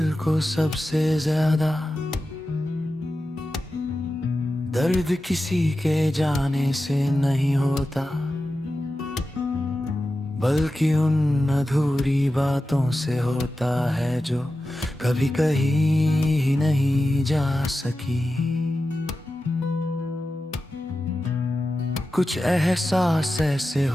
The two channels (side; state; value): both; normal; correlation 0.92